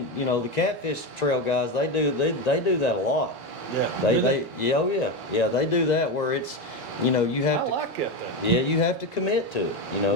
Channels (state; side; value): normal; both; correlation 0.15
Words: the catfish trail guys, they do that a lot. Yeah. They they do that where it's you have I to like it then. yeah, you have to commit to it,